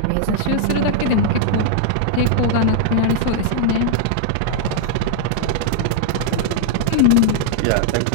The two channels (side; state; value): both; different; correlation -0.01